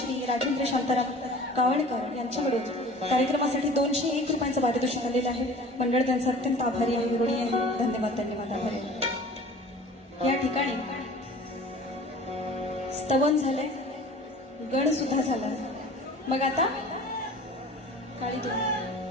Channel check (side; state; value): both; normal; correlation 0.44